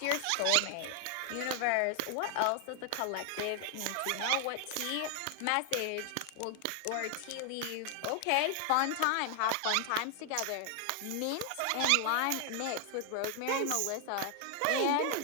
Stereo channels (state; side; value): different; both; correlation 0.00